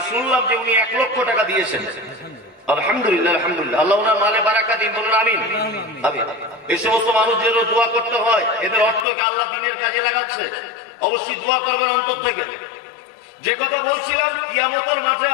শুনলাম যে উনি 1 লক্ষ টাকা দিয়েছেন। আলহামদুলিল্লাহ, আলহামদুলিল্লাহ, আল্লাহ ওনার মালে বারাকা দিন, বলুন আমিন। এই সমস্ত মানুষদের দোয়া করতে হয়, এদের অর্থকে আল্লাহ দ্বীনের কাজে লাগাচ্ছে, অবশ্যই দোয়া করবেন অন্তর থেকে। যে কথা বলছিলাম, কিয়ামতের মাঠে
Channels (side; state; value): right; drops out; at 9.1 s